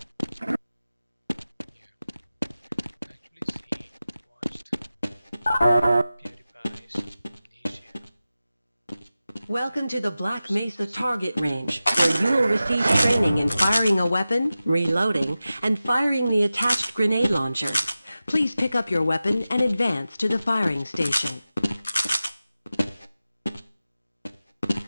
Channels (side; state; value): both; inverted; correlation -0.95